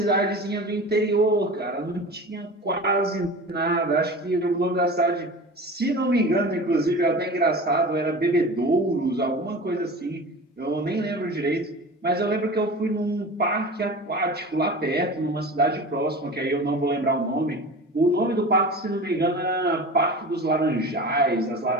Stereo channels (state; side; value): normal; both; correlation 0.34